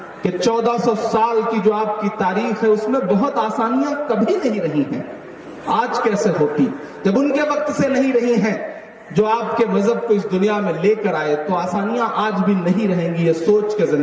कि 1400 साल की जो आपकी तारीख है उसमें बहुत आसानियां कभी नहीं रही हैं। आज कैसे होती, जब उनके वक्त से नहीं रही हैं जो आपके मजहब को इस दुनिया में लेकर आए, तो आसानियां आज भी नहीं रहेंगी। ये सोच के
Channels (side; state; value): both; identical; correlation 1.00